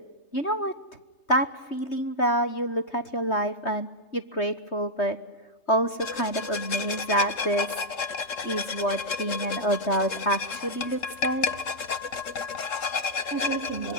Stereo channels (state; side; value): late; right; 3.7 ms